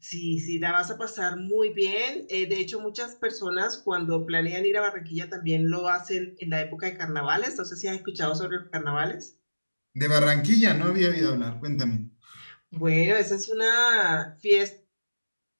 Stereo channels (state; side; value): inverted; both; correlation -1.00